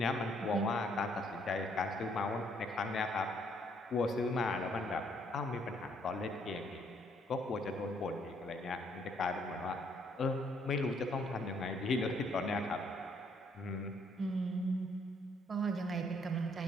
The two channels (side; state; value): both; normal; correlation 0.68